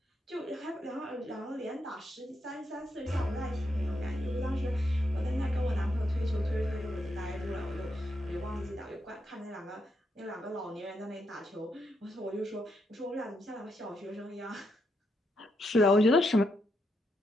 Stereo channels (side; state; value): both; normal; correlation 0.80